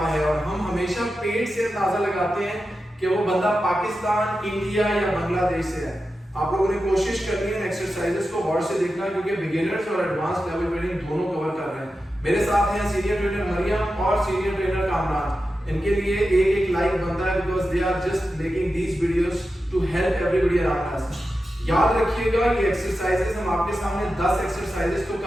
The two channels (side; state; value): both; normal; correlation 0.91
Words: है और हम हमेशा पेट से अंदाजा लगाते हैं कि वो बंदा पाकिस्तान, इंडिया या बांग्लादेश से है। आप लोगों ने कोशिश करनी है एक्सरसाइजेस को गौर से देखना, क्योंकि बिगिनर्स और एडवांस लेवल ट्रेनिंग दोनों कवर कर रहे हैं। मेरे साथ हैं सीनियर ट्रेनर मरियम और सीनियर ट्रेनर कामरान। इनके लिए एक लाइक बनता है because they are just making these videos to help everybody around us. याद रखिएगा ये एक्सरसाइजेस हम आपके सामने 10 एक्सरसाइजेस तो